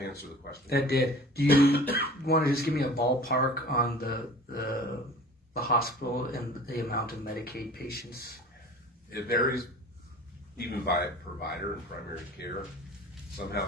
the question? That did. Do you want to just give me a ballpark on the hospital and the amount of Medicaid patients? It varies even by provider and primary care.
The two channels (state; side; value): normal; both; correlation 0.43